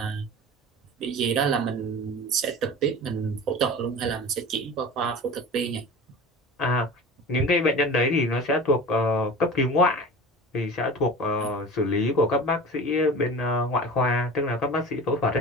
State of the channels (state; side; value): normal; both; correlation 0.36